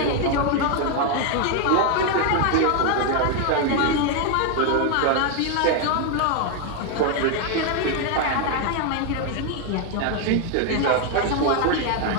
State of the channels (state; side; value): different; both; correlation 0.01